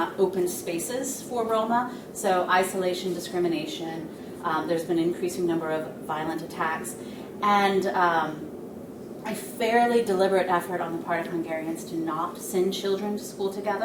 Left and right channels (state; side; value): identical; both; correlation 1.00